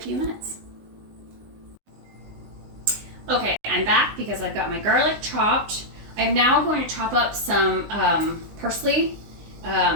minutes. Okay, I'm back because I've got my garlic chopped. I'm now going to chop up some parsley.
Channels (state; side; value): late; left; 19 ms